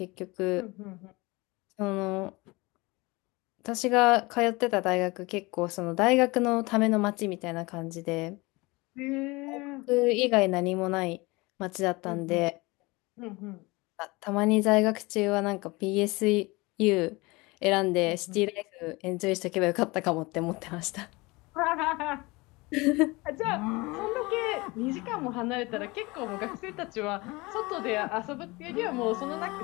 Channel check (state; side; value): quieter; right; 23.8 dB